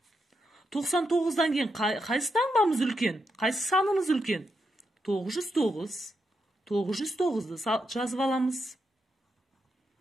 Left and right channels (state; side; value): normal; both; correlation 0.83